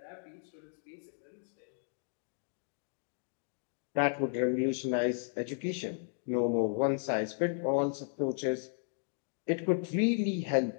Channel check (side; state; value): right; silent; 55 dB below the other